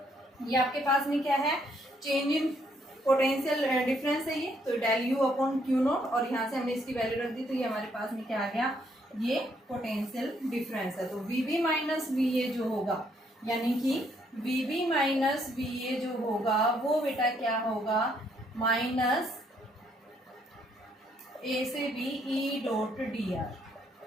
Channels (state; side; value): normal; both; correlation 0.70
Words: ये आपके पास में क्या है, चेंज इन पोटेंशियल डिफरेंस है ये, तो del U upon Q naught, और यहाँ से हमने इसकी वैल्यू रख दी, तो ये हमारे पास में क्या आ गया, ये पोटेंशियल डिफरेंस है। तो V B minus V A जो होगा, यानी कि V B minus V A जो होगा वो बेटा क्या होगा, माइनस ए से B E dot D R,